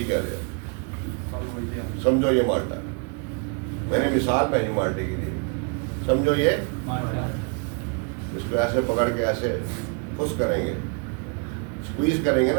क्या लिया, समझो ये माल्टा, मैंने मिसाल भाई माल्टे की दी, समझो ये माल्टा, इसको ऐसे पकड़ के ऐसे खुश करेंगे, स्क्वीज करेंगे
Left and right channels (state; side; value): quieter; left; 36.0 dB